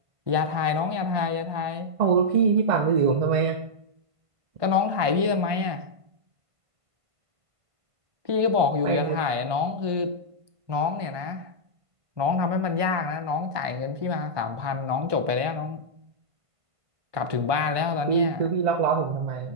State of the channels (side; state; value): left; late; 1.2 ms